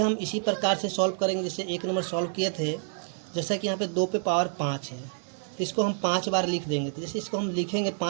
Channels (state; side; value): silent; left; 59 dB below the other